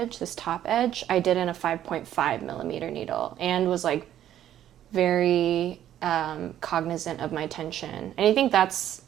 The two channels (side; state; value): left; quieter; 11.5 dB